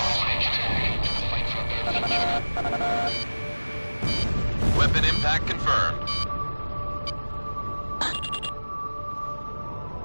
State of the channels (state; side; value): inverted; both; correlation -1.00